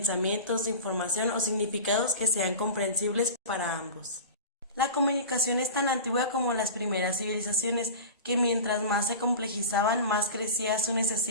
información o significados que sean comprensibles para ambos. La comunicación es tan antigua como las primeras civilizaciones, que mientras más se complejizaban, más crecía su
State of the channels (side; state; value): both; inverted; correlation -0.33